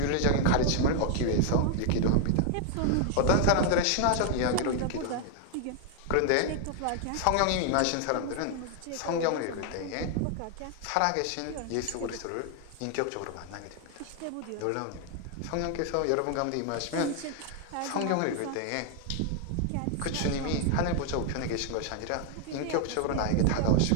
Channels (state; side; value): different; both; correlation 0.00